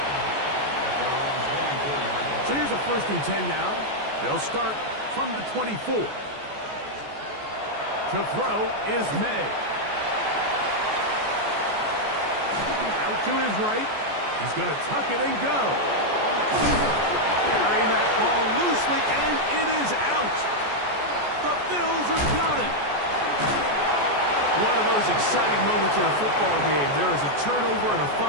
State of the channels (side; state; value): left; late; 14 ms